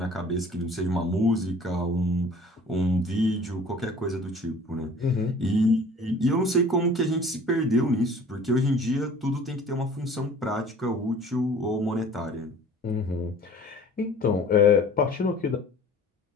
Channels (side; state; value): both; normal; correlation 0.48